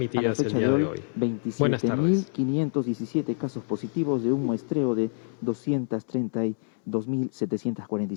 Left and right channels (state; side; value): silent; right; 58 dB below the other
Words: la fecha de hoy, 27.517 casos positivos de un muestreo de